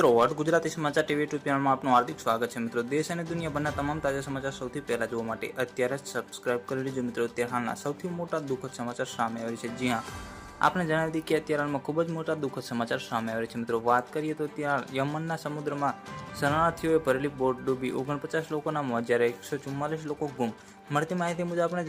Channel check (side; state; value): both; identical; correlation 1.00